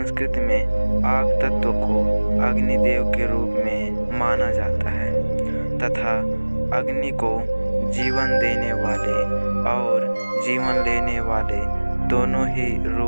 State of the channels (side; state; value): both; inverted; correlation -1.00